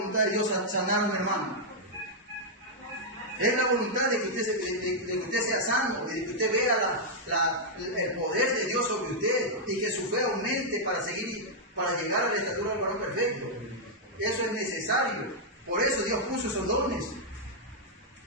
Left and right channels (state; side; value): normal; both; correlation -0.05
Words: de Dios sanar a un hermano? Es la voluntad de que usted sea sano, de que usted vea el poder de Dios sobre usted y que su fe aumente para llegar a la estatura del varón perfecto. Eso es necesario. Por eso Dios puso esos dones.